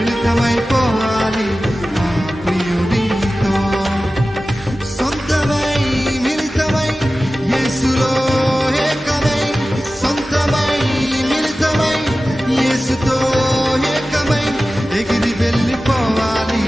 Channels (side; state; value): both; normal; correlation 0.95